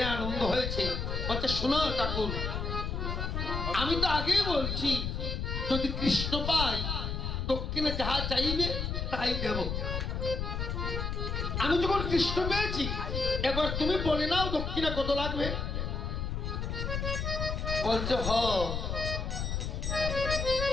আনন্দ হয়েছে, বলছে শোনো ঠাকুর, আমি তো আগেই বলছি যদি কৃষ্ণ পাই দক্ষিণে যাহা চাইবে তাই দেব। আমি যখন কৃষ্ণ পেয়েছি এবার তুমি বলে নাও দক্ষিণা কত লাগবে। বলছে হ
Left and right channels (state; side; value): noise; left; rumble, 2 dB below the sound